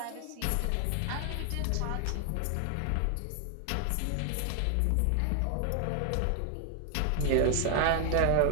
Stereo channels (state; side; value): different; both; correlation 0.00